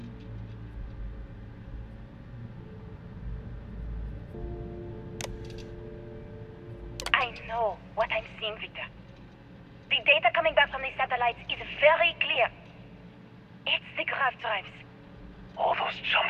I know what I'm seeing, Victor. The data coming back from the satellites is very clear. It's the grav drives. All those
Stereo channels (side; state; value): both; identical; correlation 1.00